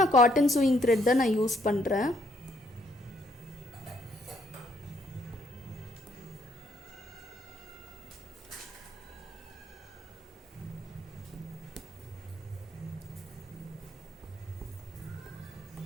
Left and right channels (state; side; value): normal; both; correlation 0.70